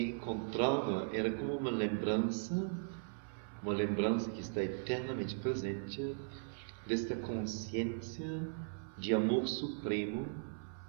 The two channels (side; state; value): left; silent; 52 dB below the other